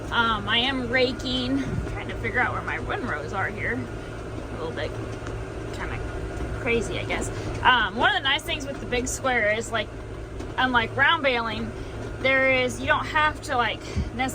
I am raking, trying to figure out where my windrows are here. A little bit kind of crazy, I guess. One of the nice things with the big square is, like, unlike round baling, you don't have to like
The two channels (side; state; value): both; identical; correlation 1.00